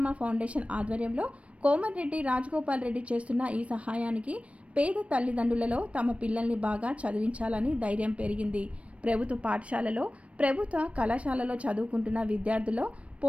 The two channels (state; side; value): late; left; 0.063 ms